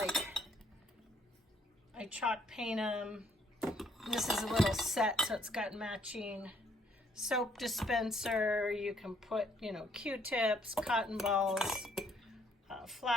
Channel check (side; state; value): both; normal; correlation 0.67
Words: I chalk paint them. This is a little set, so it's got matching soap dispenser. You can put, you know, Q-tips, cotton balls,